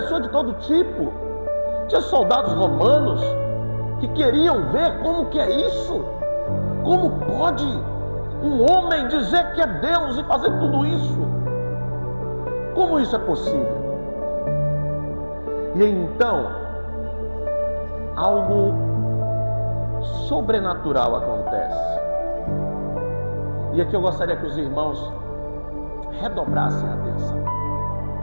de todo tipo, tinha soldados romanos que queriam ver como que é isso. Como pode um homem dizer que é Deus e fazer tudo isso? Como isso é possível? E então, algo sobrenatural acontece. E aqui eu gostaria que os irmãos redobrassem a atenção.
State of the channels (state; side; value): inverted; both; correlation -1.00